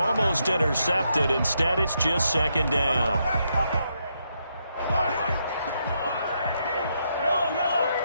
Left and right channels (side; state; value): both; inverted; correlation -0.79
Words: intercepted. Instead, it's just 2nd down.